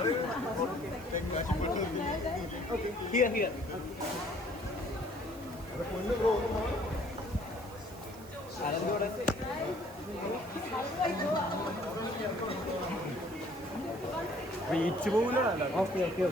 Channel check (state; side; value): noise; right; hiss, 21 dB below the sound